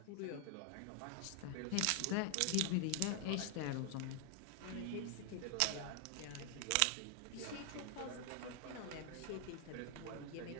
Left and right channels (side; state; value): both; different; correlation 0.00